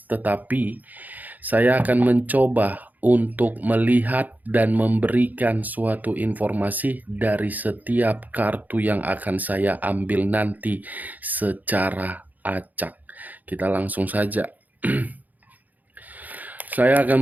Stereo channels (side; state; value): left; late; 0.081 ms